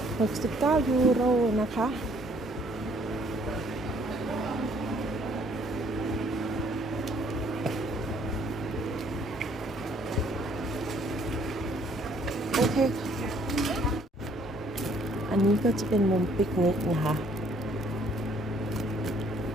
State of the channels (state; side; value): normal; both; correlation 0.63